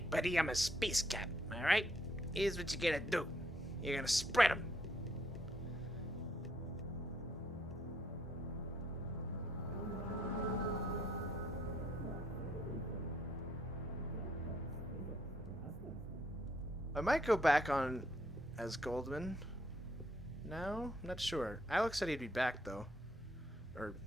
buddy, I'm a space cap, alright? Here's what you're gonna do. You're gonna spread them. I might go back on as Goldman. No? I'm not sure. Alex said he'd be back, though. Or,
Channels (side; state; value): both; normal; correlation 0.71